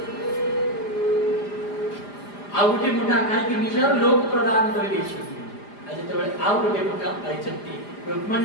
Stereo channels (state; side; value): late; right; 4.9 ms